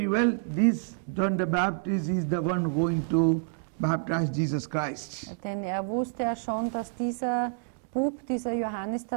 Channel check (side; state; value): left; silent; digital silence